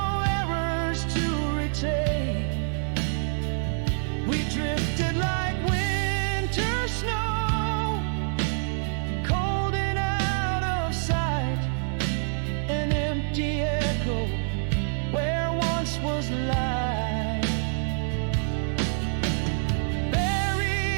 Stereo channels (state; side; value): silent; left; 61 dB below the other